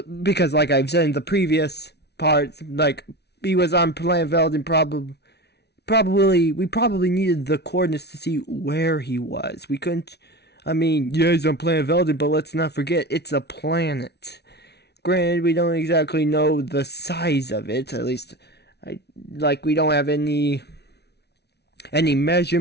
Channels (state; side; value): late; right; 0.49 ms